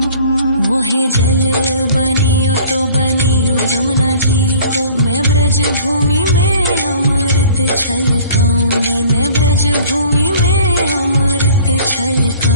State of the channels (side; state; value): both; inverted; correlation -0.50